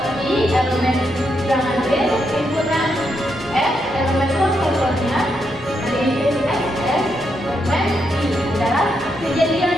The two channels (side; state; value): both; normal; correlation 0.81